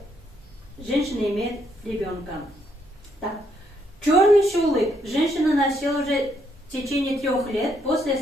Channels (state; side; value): normal; both; correlation 0.73